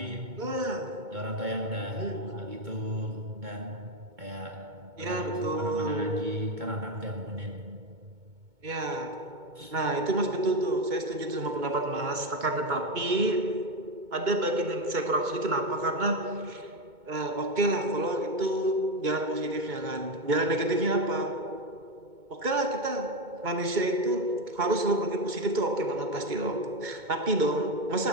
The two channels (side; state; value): left; late; 2.2 ms